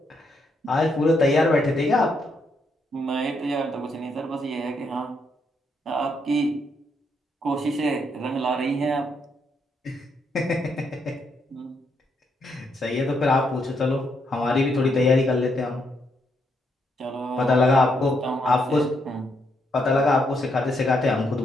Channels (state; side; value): normal; both; correlation 0.76